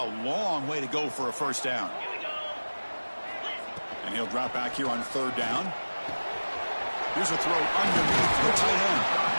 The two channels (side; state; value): both; inverted; correlation -1.00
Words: long way to go for a first down. And he'll drop back here on third down. Here's a throw underneath the tight end.